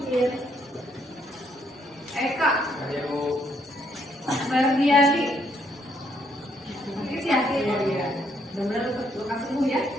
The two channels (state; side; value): normal; both; correlation 0.71